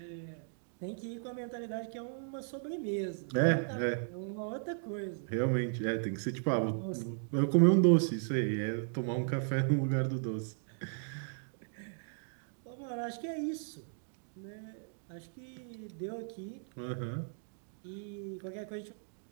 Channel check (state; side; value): silent; left; digital silence